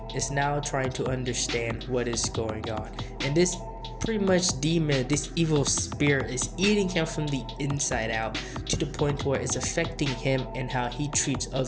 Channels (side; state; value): both; identical; correlation 1.00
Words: is now trying to understand what is going on, and this pretty much demon, this evil spirit, is eating him from the inside out to the point where it's affecting him and how he treats